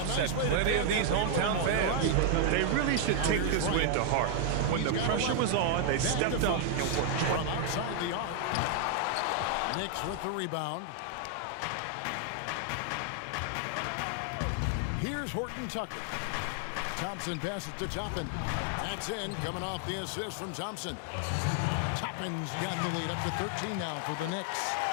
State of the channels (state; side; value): different; both; correlation 0.00